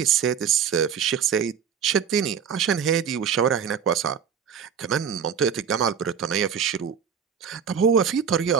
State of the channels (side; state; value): left; quieter; 7.5 dB